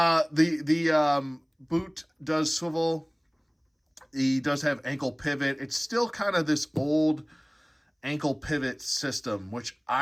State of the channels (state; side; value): identical; both; correlation 1.00